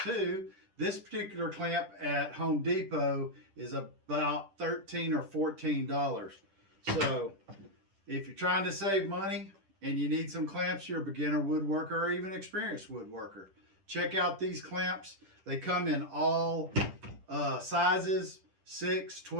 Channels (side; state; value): left; late; 10 ms